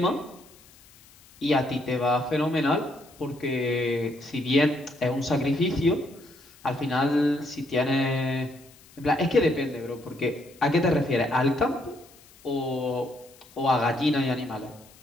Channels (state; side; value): noise; left; hiss, 26 dB below the sound